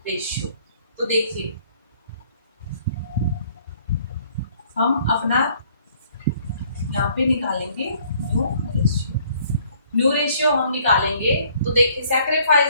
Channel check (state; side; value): inverted; both; correlation -0.61